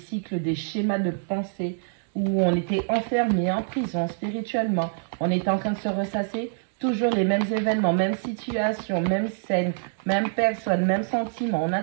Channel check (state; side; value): silent; left; digital silence